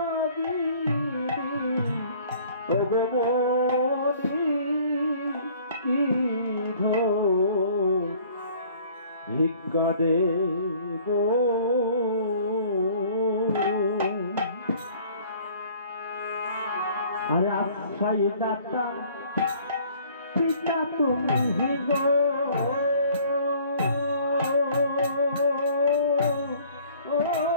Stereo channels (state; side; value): inverted; both; correlation -0.54